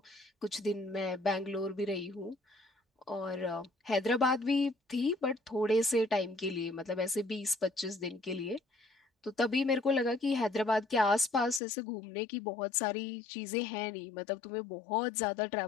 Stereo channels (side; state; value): right; drops out; at 11.6 s